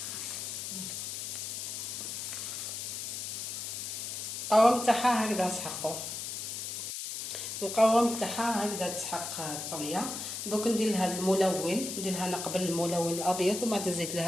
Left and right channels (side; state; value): left; noise; hiss, 5 dB below the sound